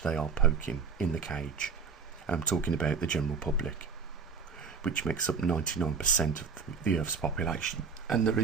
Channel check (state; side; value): quieter; left; 5.4 dB